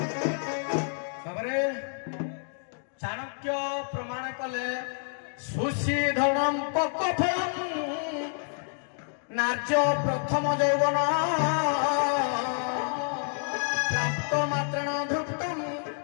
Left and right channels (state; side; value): silent; right; digital silence